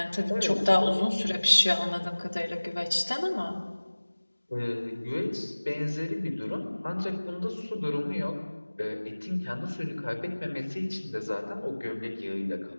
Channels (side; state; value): both; inverted; correlation -1.00